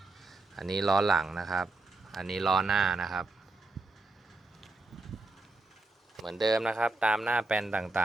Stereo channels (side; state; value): left; quieter; 3.2 dB